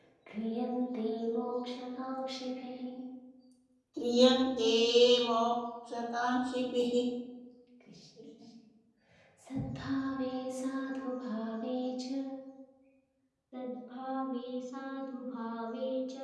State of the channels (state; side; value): identical; both; correlation 1.00